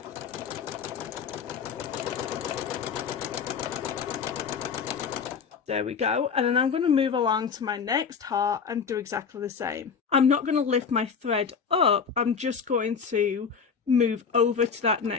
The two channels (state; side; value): quieter; right; 6.2 dB